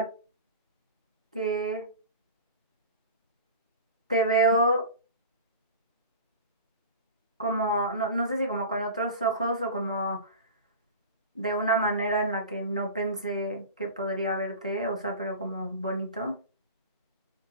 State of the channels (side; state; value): both; inverted; correlation -0.32